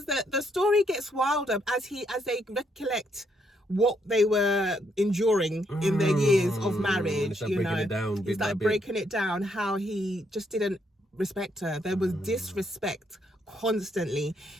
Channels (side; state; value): both; normal; correlation 0.74